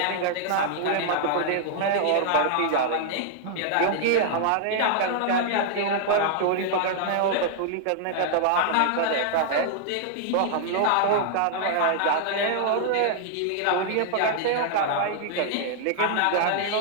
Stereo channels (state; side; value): different; both; correlation -0.01